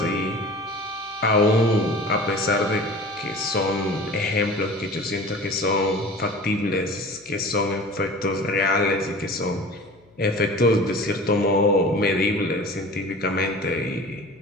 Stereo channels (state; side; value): noise; left; hum, 30 dB below the sound